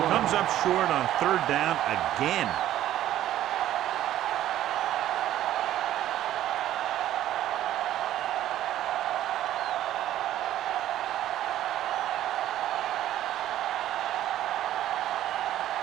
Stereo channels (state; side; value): quieter; left; 12.8 dB